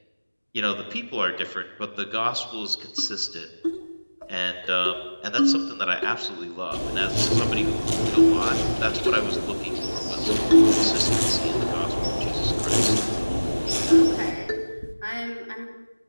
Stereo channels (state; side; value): inverted; both; correlation -1.00